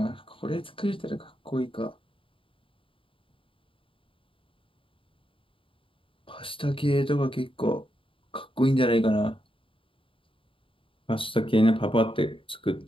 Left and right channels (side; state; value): right; late; 0.25 ms